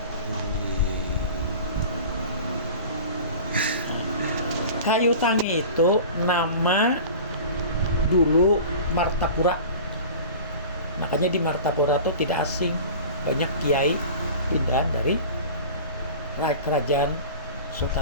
Kayu Tangi itu nama dulu Martapura. Makanya di Martapura itu tidak asing, banyak kiai pindah dari kerajaan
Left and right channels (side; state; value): both; inverted; correlation -0.38